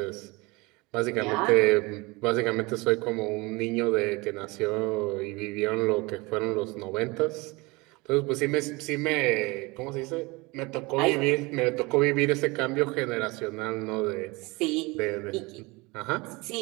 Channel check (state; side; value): quieter; left; 24.8 dB